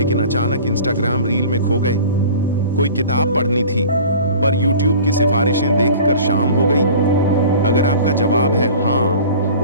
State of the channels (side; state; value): both; inverted; correlation -0.42